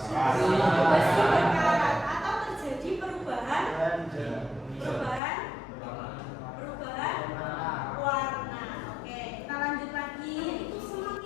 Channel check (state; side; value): drops out; right; at 5.2 s